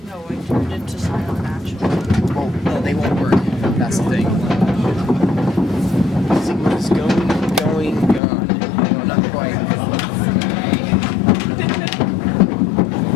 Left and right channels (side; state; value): right; drops out; at 8.2 s